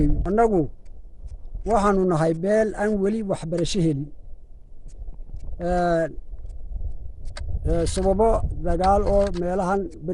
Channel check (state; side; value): identical; both; correlation 1.00